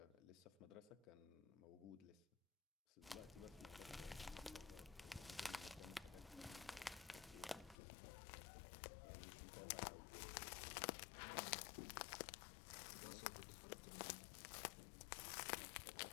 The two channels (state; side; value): drops out; right; at 7.8 s